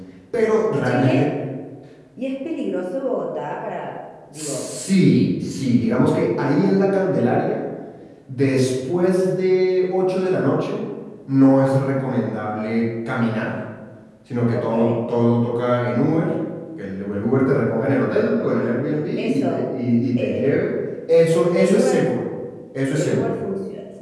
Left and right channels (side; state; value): both; identical; correlation 1.00